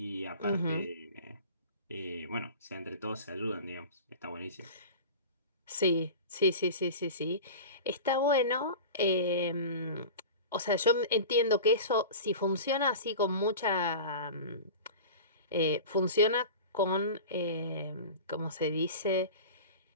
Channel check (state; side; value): inverted; both; correlation -0.33